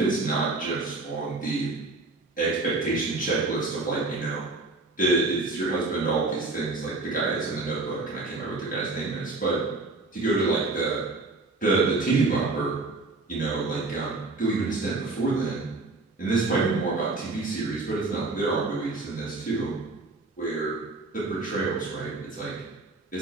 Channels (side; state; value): left; quieter; 3.3 dB